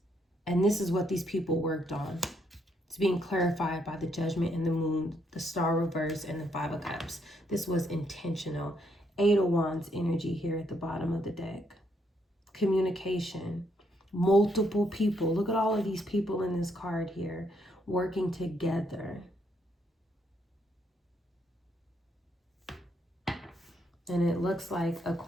And this is what these people worked on. It's being clarified by the Judgment and the Moon, the Star reverse, and the Five of Cups. This was intentional. Eight of Wands energy here at the bottom of the deck. Communication. Multiple people. Look at all of these people in this card here working together. And it looks like a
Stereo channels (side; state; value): both; normal; correlation 0.74